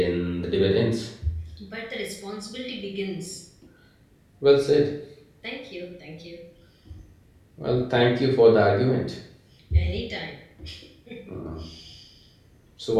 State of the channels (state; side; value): identical; both; correlation 1.00